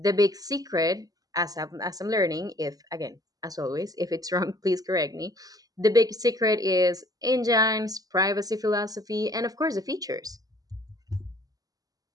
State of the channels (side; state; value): left; late; 0.18 ms